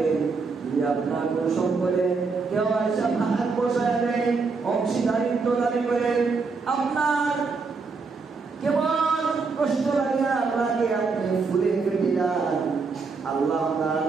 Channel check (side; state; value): left; quieter; 4.6 dB